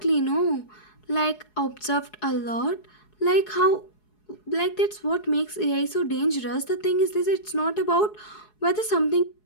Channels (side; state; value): right; late; 4.7 ms